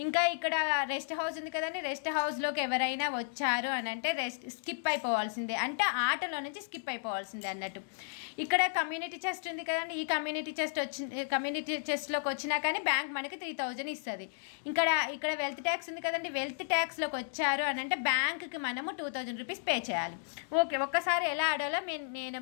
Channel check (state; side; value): silent; right; digital silence